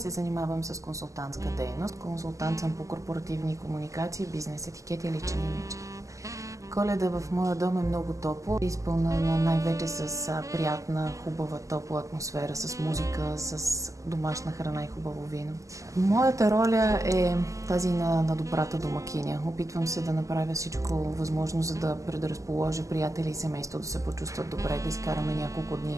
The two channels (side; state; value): left; late; 0.16 ms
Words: занимавам с консултантска дейност. Консултант съм по корпоративни комуникации, бизнес етикет и личен имидж. Коледа в моя дом е много топло, изпълнена най-вече с приятна, хубава, топла атмосфера, с музика, с домашна храна и хубаво вино. Моята роля е тази на добрата домакиня. Опитвам се да направя всичко възможно, за да предразположа приятели и семейство да се почувстват добре, да изкараме няколко